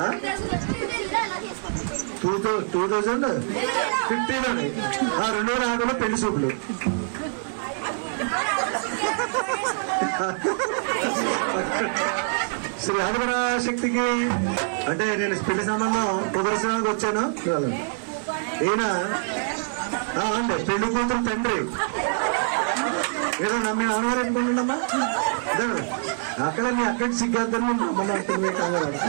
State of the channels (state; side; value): silent; left; digital silence